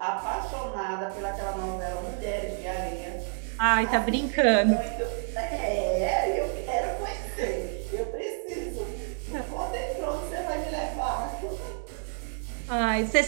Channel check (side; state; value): left; silent; 59 dB below the other